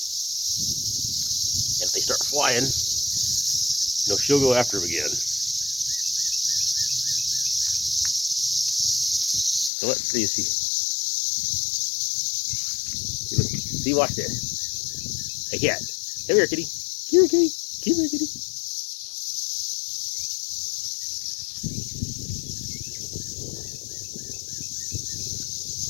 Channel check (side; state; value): right; drops out; at 9.7 s